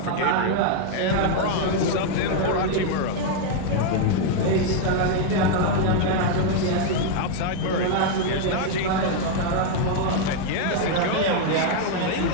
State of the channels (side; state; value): both; different; correlation 0.00